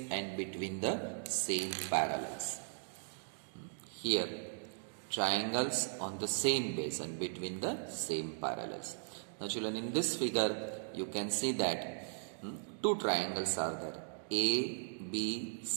and between the same parallels. Here, triangles on the same base and between the same parallels. Now children, in this figure you can see that two triangles are there, A, B,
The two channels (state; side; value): silent; left; digital silence